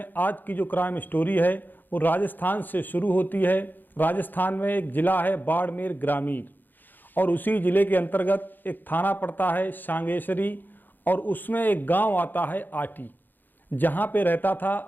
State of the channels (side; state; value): right; late; 0.089 ms